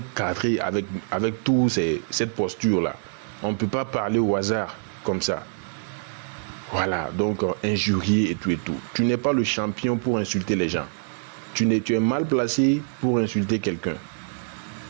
cadrées avec tout cette posture-là. On ne peut pas parler au hasard comme ça. Voilà, donc injurier et tout. Tu n'es pas le champion pour insulter les gens. Tu es mal placé pour insulter quelqu'un.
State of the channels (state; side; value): silent; left; digital silence